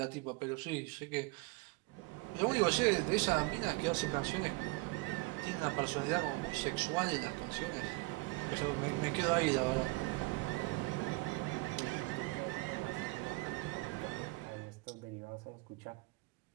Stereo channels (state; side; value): quieter; left; 25.5 dB